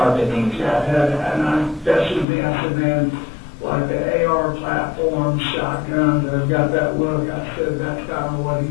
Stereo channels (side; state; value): right; drops out; at 2.2 s